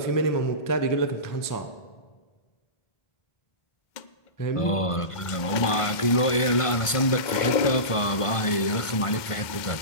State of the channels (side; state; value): right; late; 1.5 ms